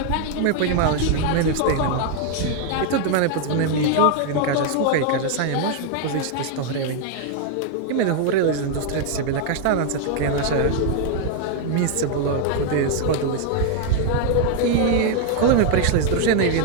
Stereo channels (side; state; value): both; different; correlation 0.00